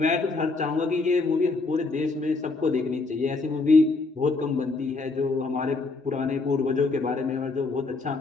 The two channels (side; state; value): right; quieter; 3.7 dB